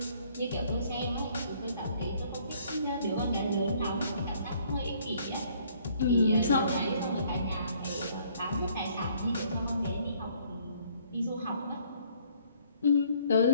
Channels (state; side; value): inverted; both; correlation -0.62